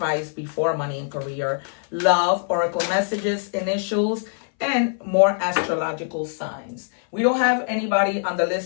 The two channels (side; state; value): right; silent; 61 dB below the other